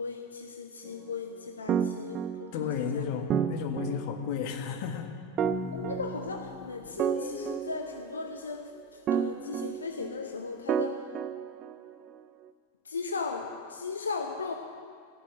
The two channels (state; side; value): normal; both; correlation 0.14